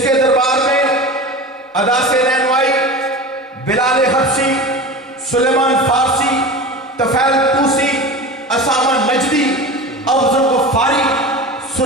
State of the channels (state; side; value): normal; both; correlation 0.31